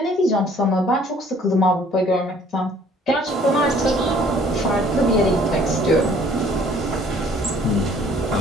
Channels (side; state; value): both; normal; correlation 0.57